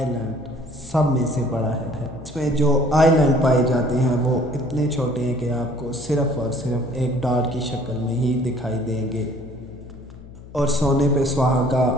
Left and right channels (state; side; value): noise; left; hum, 18 dB below the sound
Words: सब में से बड़ा है। इसमें जो आइलैंड पाए जाते हैं वो इतने छोटे हैं कि आपको सिर्फ और सिर्फ एक डॉट की शक्ल में ही दिखाई देंगे। और सोने पे सुहागा,